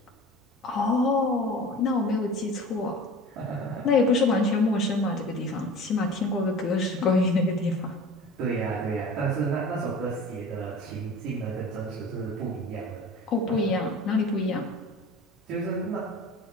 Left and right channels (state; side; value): normal; both; correlation 0.39